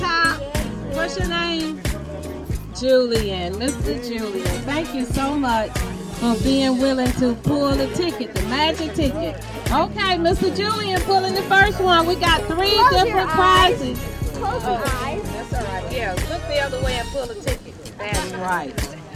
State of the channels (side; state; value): both; identical; correlation 1.00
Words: What's your name? Julian. Mr. Julian. Thank you so much for being willing to pull the ticket, the magic ticket. Okay, Mr. Julian pulling the first one. We got 3 different prizes. Close your eyes. That's all right. Yeah, look the other way and pull the ticket. That's right.